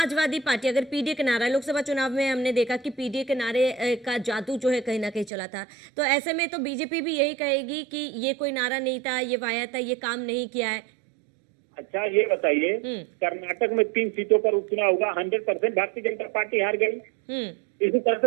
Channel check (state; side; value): drops out; left; at 5.3 s